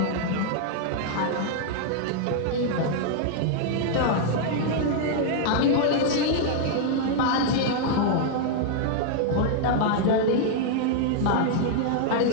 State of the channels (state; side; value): different; both; correlation -0.01